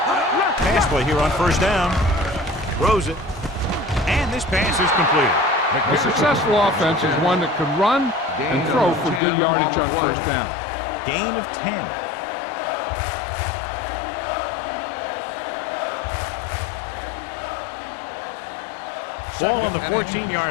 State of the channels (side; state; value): right; drops out; at 9.2 s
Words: Pass play here on 1st down. Throws it. And this pass is completed. A successful offense is one that can run and throw for good yardage on 1st down. Gain of 10. Ball on the